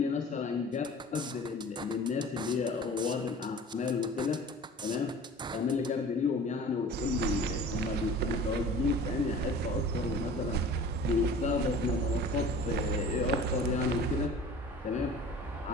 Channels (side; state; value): both; normal; correlation 0.43